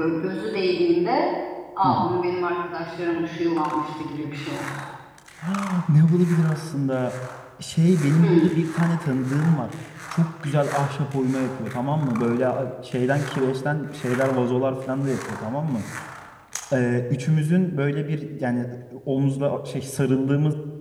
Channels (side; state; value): both; identical; correlation 1.00